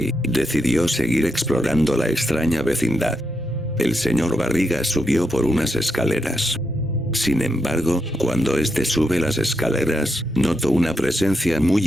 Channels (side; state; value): both; normal; correlation 0.83